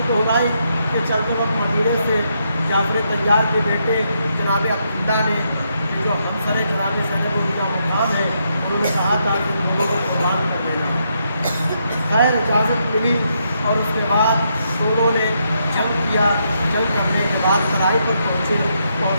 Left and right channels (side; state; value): both; inverted; correlation -0.78